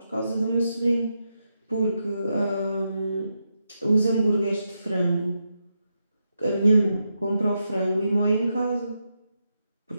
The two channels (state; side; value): inverted; both; correlation -0.85